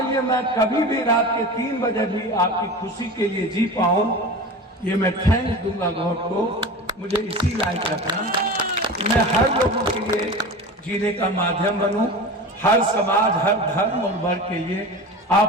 लिए मैं कभी भी रात के 3 बजे भी आपकी खुशी के लिए जी पाऊं, ये मैं थैंक्स दूंगा गॉड को। मुझे इसी लायक रखना, मैं हर लोगों के लिए जीने का माध्यम बनूं, हर समाज, हर धर्म और वर्ग के लिए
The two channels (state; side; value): normal; both; correlation 0.32